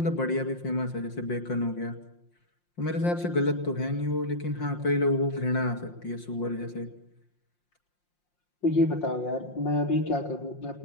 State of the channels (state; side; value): late; right; 5.7 ms